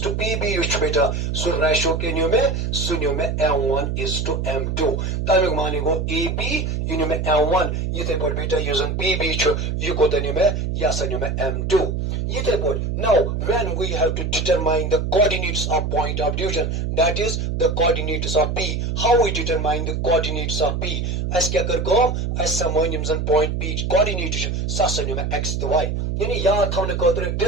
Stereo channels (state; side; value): noise; right; hum, 1 dB below the sound